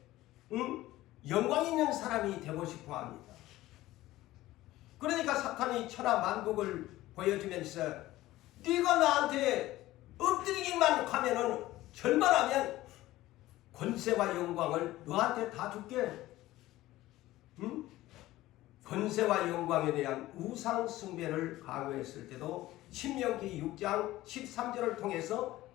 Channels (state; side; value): quieter; right; 16.5 dB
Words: 영광 있는 사람이 되고 싶어 합니다. 그러니까 사탄이 천하 만국을 보여주면서 네가 나한테 엎드리기만 하면은 절만하면 권세와 영광을 너한테 다 줄게. 권세와 영광에 대한 우상 숭배를 강요했을 때도 신명기 6장 13절을 통해서